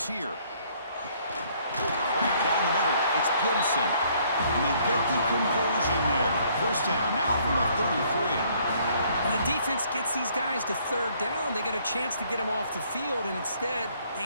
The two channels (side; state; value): both; inverted; correlation -0.64